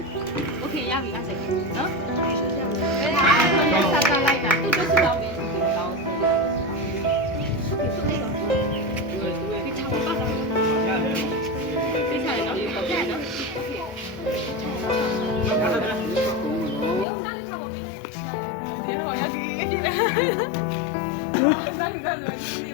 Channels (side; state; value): right; drops out; at 17.1 s